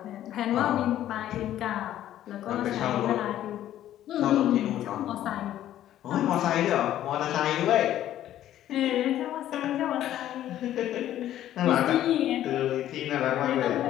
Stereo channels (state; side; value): quieter; right; 12.4 dB